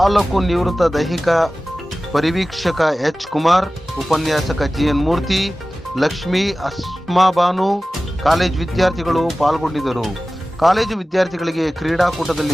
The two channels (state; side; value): normal; both; correlation 0.96